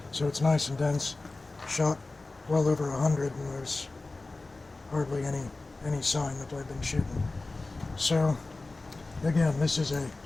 so it's nice and dense. Shot well over 100, and there's hardly any sign that I've been shooting. So again, this is a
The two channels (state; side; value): quieter; right; 3.3 dB